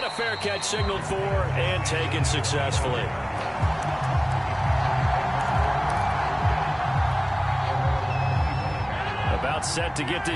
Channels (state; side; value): identical; both; correlation 1.00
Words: a fair catch signaled for and taken successfully. About set to get